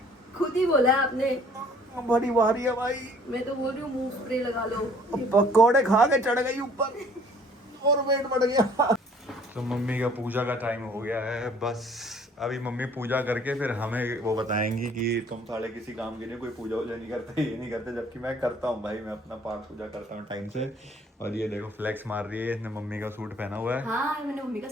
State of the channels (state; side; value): normal; both; correlation 0.56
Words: खुद ही बोला है आपने, बड़ी भारी है भाई। मैं तो बोल रही हूँ मुंह स्प्रे लगा लो। पकोड़े खा के चढ़ गई ऊपर और वेट बढ़ गया। तो मम्मी का पूजा का टाइम हो गया है, बस अभी मम्मी पूजा करके फिर हमें वो बताएंगी कि तुम साले किसी काम के लिए कोई पूजा वूजा नहीं करते, ये नहीं करते, जबकि मैं करता हूँ भाई, मैं अपना पाठ पूजा करता हूँ टाइम से। और ये देखो फ्लेक्स मार रही है, इसने मम्मी का सूट पहना हुआ है, हाँ, मैंने मम्मी का